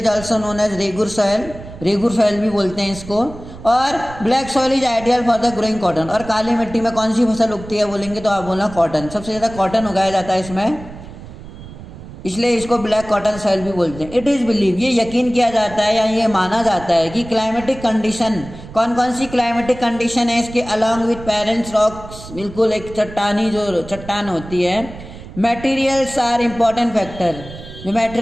also known as regur soil, regur soil भी बोलते हैं इसको। और black soil is ideal for the growing cotton, और काली मिट्टी में कौन सी फसल उगती है बोलेंगे तो आप बोलना कॉटन, सबसे ज़्यादा कॉटन उगाया जाता है इसमें, इसलिए इसको ब्लैक कॉटन सॉइल भी बोलते हैं। इट इज़ बिलीव, ये यकीन किया जाता है या ये माना जाता है कि क्लाइमेटिक कंडीशन, कौन कौन सी क्लाइमेटिक कंडीशन है इसके, अलॉन्ग विथ पेरेंट्स रॉक्स, बिल्कुल एक चट्टानी जो चट्टान होती है, मटेरियल्स आर इम्पॉर्टेंट फैक्टर, जो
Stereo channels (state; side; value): noise; right; rumble, 15 dB below the sound